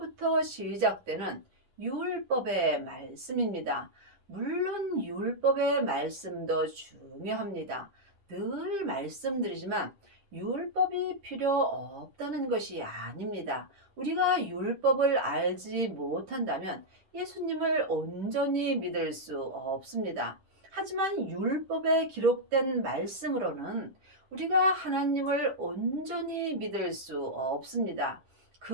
시작되는 율법의 말씀입니다. 물론 율법의 말씀도 중요합니다. 늘 말씀드리지만 율법이 필요 없다는 것이 아닙니다. 우리가 율법을 알지 못한다면 예수님을 온전히 믿을 수 없습니다. 하지만 율법에 기록된 말씀으로는 우리가 하나님을 온전히 믿을 수 없습니다.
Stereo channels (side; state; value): left; late; 10 ms